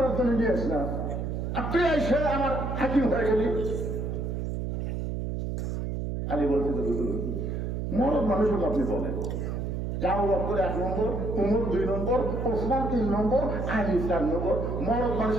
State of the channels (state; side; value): noise; right; hum, 2 dB below the sound